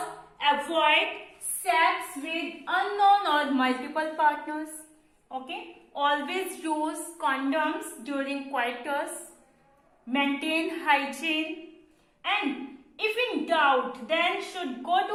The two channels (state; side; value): identical; both; correlation 1.00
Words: avoid sex with unknown or multiple partners. Okay, always use condoms during coitus. Maintain hygiene, and if in doubt, then should go